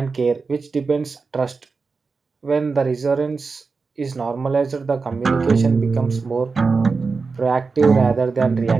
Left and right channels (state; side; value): quieter; left; 4.5 dB